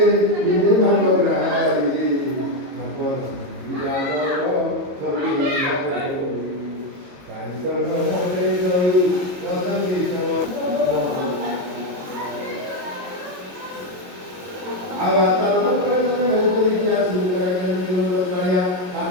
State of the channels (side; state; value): left; late; 22 ms